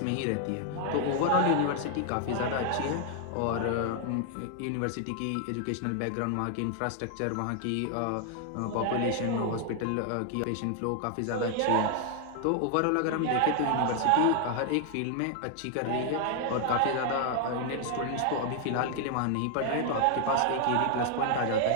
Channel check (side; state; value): both; different; correlation 0.00